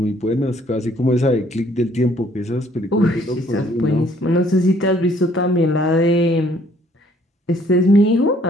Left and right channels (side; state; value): both; normal; correlation 0.62